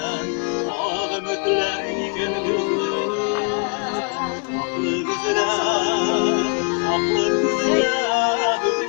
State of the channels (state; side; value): quieter; right; 36.9 dB